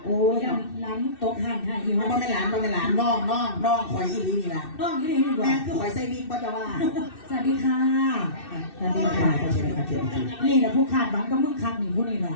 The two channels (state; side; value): late; right; 2.6 ms